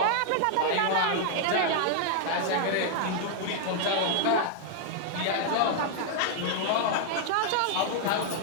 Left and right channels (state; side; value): different; both; correlation 0.00